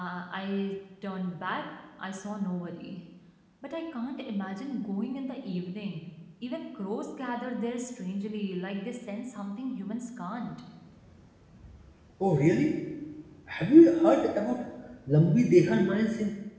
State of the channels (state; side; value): identical; both; correlation 1.00